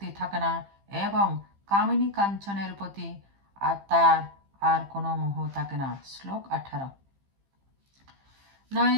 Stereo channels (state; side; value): late; left; 15 ms